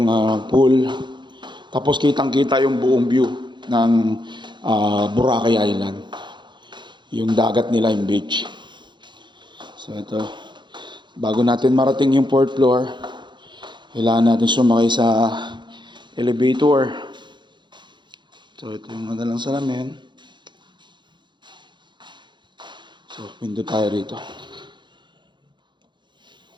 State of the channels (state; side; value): late; left; 0.22 ms